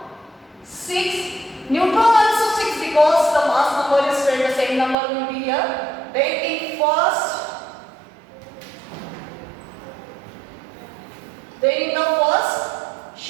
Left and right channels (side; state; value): left; drops out; at 5.0 s